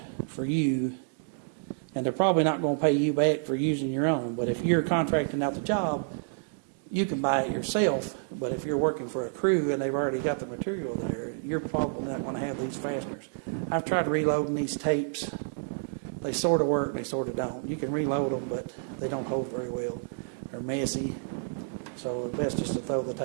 for you, and they're probably not going to pay you back for using your own. But if you're contracting out the job, you can buy it yourself. But if you're working for a crew and they've already got the material there, you're probably not going to have these fasteners. I've tried reloading these tapes. They sort of work, they sort of don't. You can reload them, but they don't hold very well. They're messy, so it's best just to throw the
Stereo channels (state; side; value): silent; left; digital silence